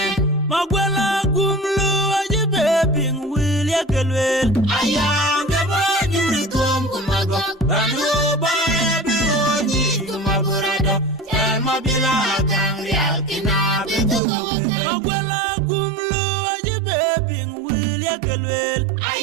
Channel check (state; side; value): drops out; left; at 14.2 s